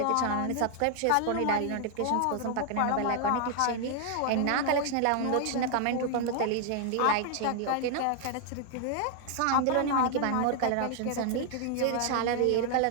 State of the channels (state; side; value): different; both; correlation 0.00